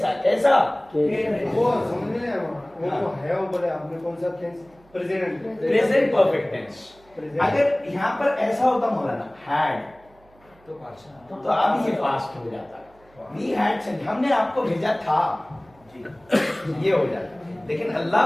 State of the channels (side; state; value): right; noise; hum, 29 dB below the sound